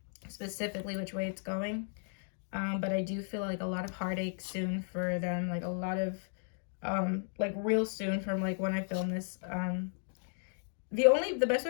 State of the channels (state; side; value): silent; right; digital silence